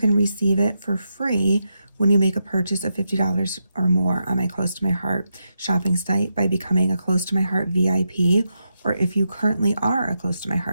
receive it for free when you make a purchase of $50 or more on my Close to My Heart shopping site by becoming a Close to My Heart VIP, or if you currently are a Close to My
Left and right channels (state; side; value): inverted; both; correlation -0.85